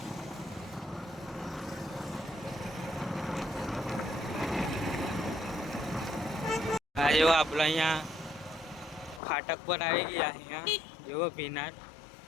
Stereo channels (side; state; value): right; drops out; at 9.2 s